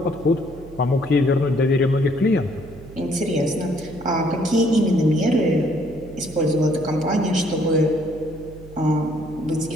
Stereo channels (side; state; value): right; noise; hum, 18 dB below the sound